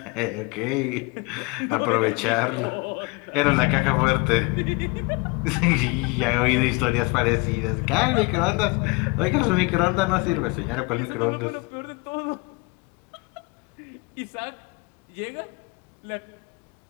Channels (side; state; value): right; quieter; 26.2 dB